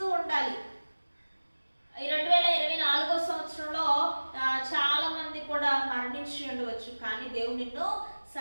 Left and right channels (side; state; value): both; inverted; correlation -1.00